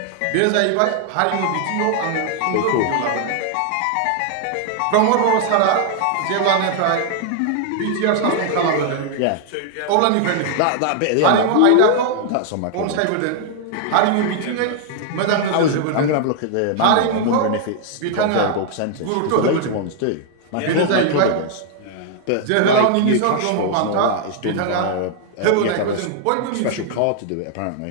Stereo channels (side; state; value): both; different; correlation 0.00